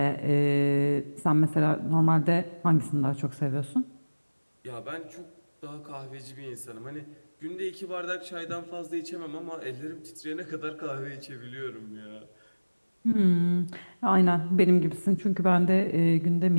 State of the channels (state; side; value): inverted; both; correlation -1.00